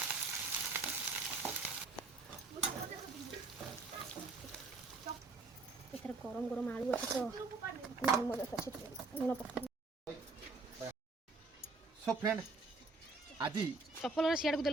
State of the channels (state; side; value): quieter; left; 3.7 dB